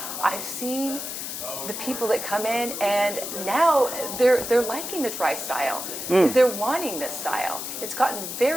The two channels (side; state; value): left; noise; hiss, 6 dB below the sound